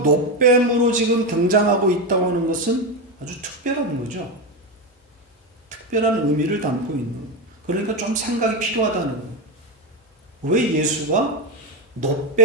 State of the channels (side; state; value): both; normal; correlation 0.13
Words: 지금 등장하고 있다고 하는 것은 아주 특별한 거죠. 특별한 의미를 담고 있는 거예요. 그러니까 좀 생각이 필요하다는 거예요. 왜 예수가